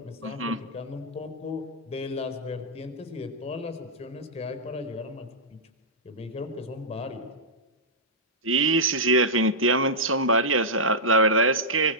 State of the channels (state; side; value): normal; both; correlation -0.12